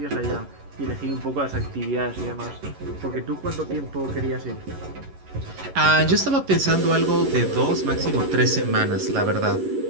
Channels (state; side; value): late; left; 11 ms